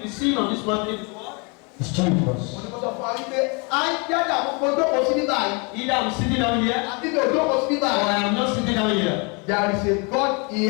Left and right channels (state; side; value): quieter; right; 31.9 dB